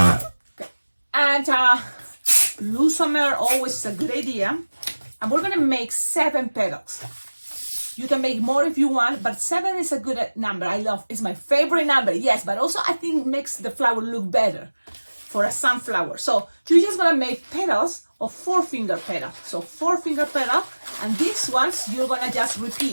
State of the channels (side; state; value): both; inverted; correlation -1.00